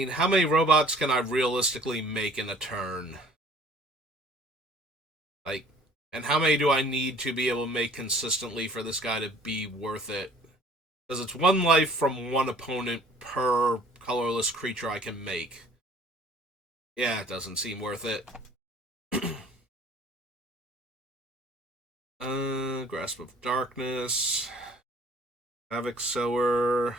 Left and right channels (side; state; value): both; normal; correlation 0.53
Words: how many robots can I realistically make in a turn? Like, and how many do I need to be able to make consistently for this guy to be worth it? Because it's 1 life from 1 opponent per colorless creature I can make. Yeah, it doesn't seem worth it. Grasp of Darkness. Havoc Sower.